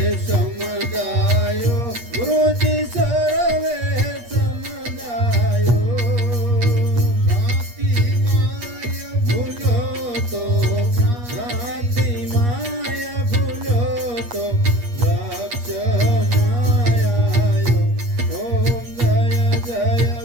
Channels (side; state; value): left; late; 8.4 ms